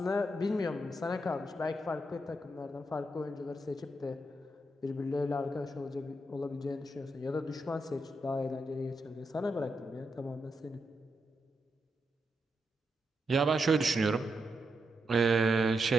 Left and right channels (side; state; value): both; normal; correlation 0.83